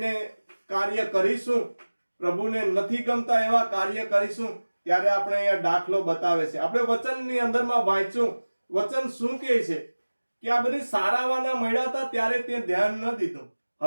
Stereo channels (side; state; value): both; inverted; correlation -1.00